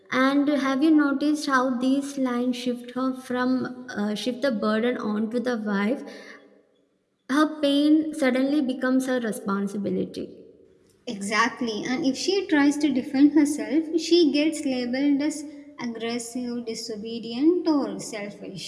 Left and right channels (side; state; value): both; identical; correlation 1.00